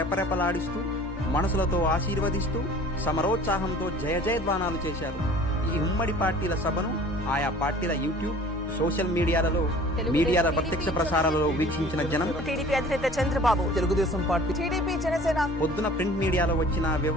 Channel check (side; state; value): both; normal; correlation 0.47